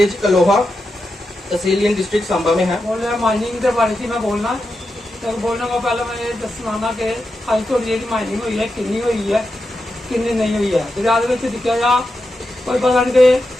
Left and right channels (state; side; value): normal; both; correlation 0.88